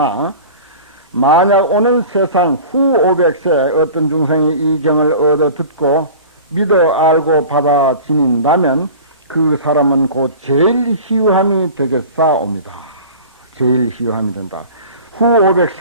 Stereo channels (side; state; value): both; inverted; correlation -0.39